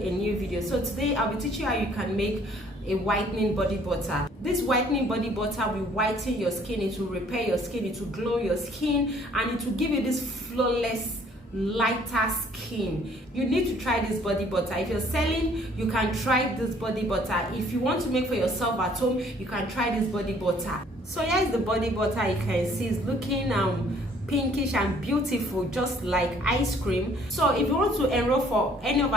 a new video. So today I'll be teaching you how you can make a whitening body butter. This whitening body butter will whiten your skin, it will repair your skin, it will glow your skin, and it will give you this flawless lighter skin. You need to try this body butter. If you're selling, you can try this body butter. If you want to make for yourself at home, you can try this body butter. So here's the body butter. You can see it's looking pinkish and beautiful, just like ice cream. So if you want to enroll for any of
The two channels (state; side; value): normal; both; correlation 0.59